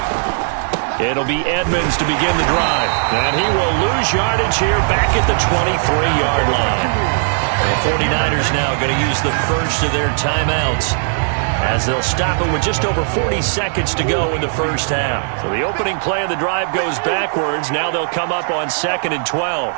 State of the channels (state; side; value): silent; left; 68 dB below the other